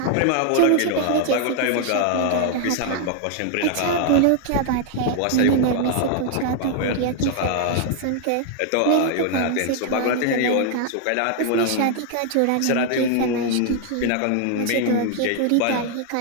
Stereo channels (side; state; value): both; different; correlation 0.00